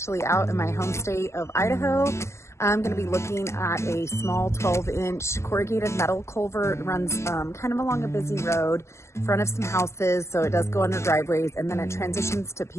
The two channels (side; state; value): right; late; 0.13 ms